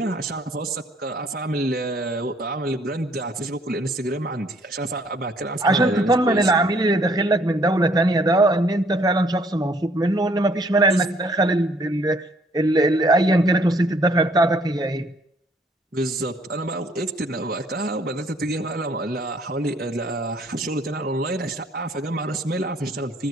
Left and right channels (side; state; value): both; normal; correlation 0.63